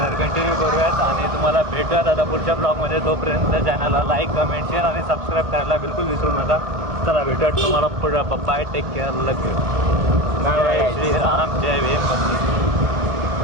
कंटिन्यू करूयात आणि तुम्हाला भेटूयात आता पुढच्या ब्लॉगमध्ये. तोपर्यंत चॅनलला लाईक कमेंट शेअर आणि सबस्क्राईब करायला बिलकुल विसरू नका. चला भेटूयात तुम्हाला पुढं. बाय टेक केअर लगे. जय श्रीराम जय भीम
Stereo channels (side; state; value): left; late; 1.6 ms